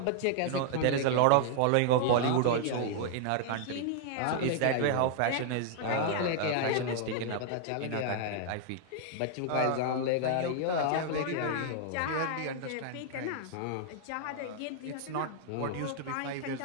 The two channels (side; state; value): both; different; correlation -0.01